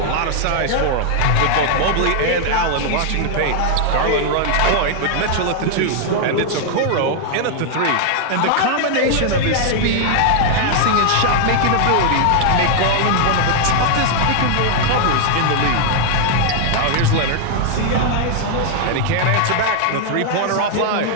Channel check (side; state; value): both; different; correlation 0.00